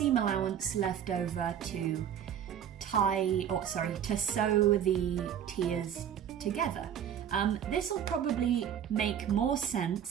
allowance left over to to sew the tiers together. This will probably make more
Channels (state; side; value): quieter; left; 9.2 dB